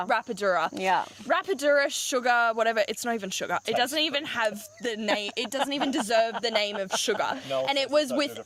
Yeah. Rapadura sugar, whatever. It's not even sugar. It doesn't even have the name. It doesn't even deserve the name of sugar. No, and it was with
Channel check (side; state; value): both; identical; correlation 1.00